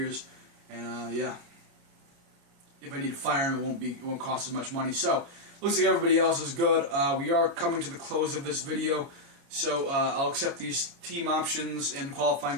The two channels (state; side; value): late; left; 29 ms